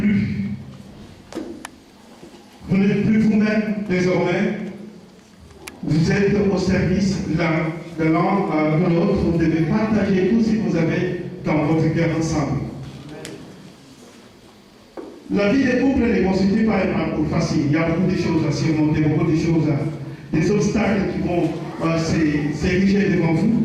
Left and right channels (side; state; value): both; identical; correlation 1.00